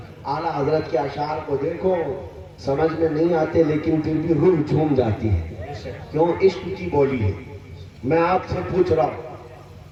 اعلیٰ حضرت کے اشعار کو دیکھو, سمجھ میں نہیں آتے لیکن پھر بھی روح جھوم جاتی ہے. کیوں؟ عشق کی بولی ہے. میں آپ سے پوچھ رہا ہوں,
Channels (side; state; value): both; identical; correlation 1.00